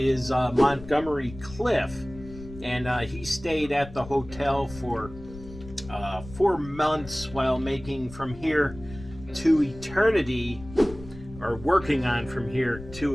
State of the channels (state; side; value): noise; left; rumble, 15 dB below the sound